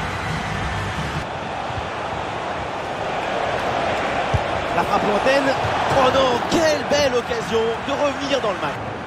La frappe lointaine. Oh non, quelle belle occasion de revenir dans le match.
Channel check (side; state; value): both; identical; correlation 1.00